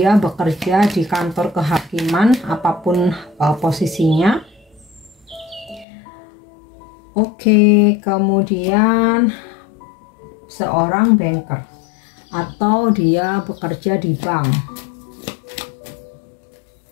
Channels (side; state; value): right; drops out; at 5.9 s